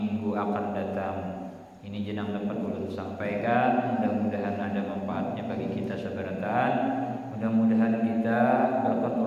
akan datang. Ini jenang dapat ulun sampaikan, mudah-mudahan ada manfaatnya bagi kita seberatan. Mudah-mudahan kita berkat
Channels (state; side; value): identical; both; correlation 1.00